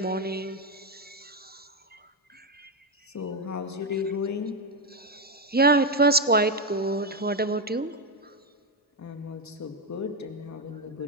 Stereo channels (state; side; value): normal; both; correlation 0.06